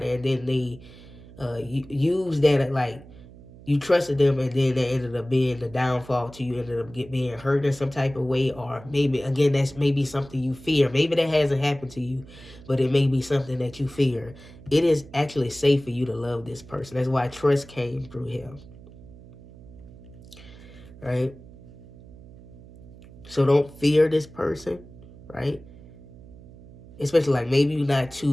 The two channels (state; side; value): noise; right; hum, 19 dB below the sound